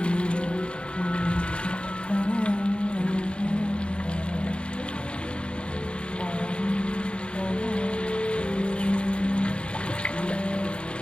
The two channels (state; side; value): late; right; 0.057 ms